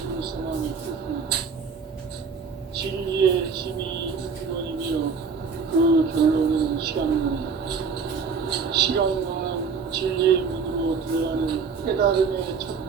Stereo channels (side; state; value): left; quieter; 5.4 dB